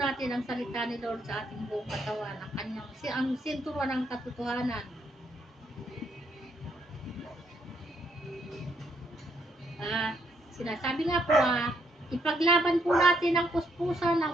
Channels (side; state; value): both; normal; correlation 0.73